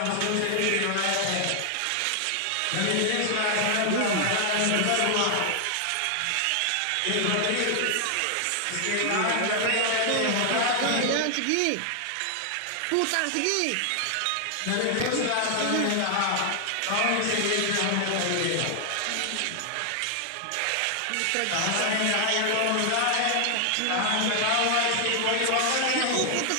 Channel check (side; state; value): both; different; correlation 0.00